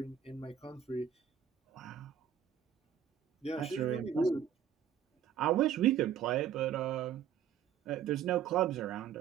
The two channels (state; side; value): quieter; left; 9.0 dB